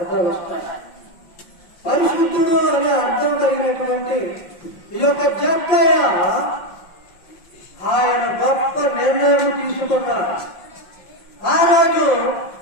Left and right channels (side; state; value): right; late; 5.6 ms